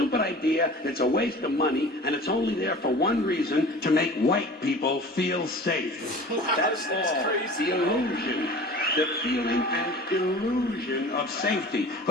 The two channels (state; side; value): normal; both; correlation 0.41